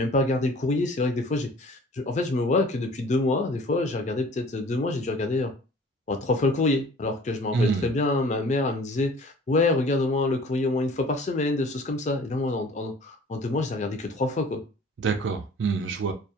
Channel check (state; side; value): normal; both; correlation 0.48